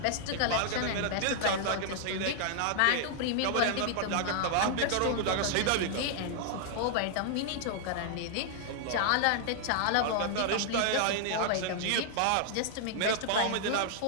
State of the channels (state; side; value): different; both; correlation 0.00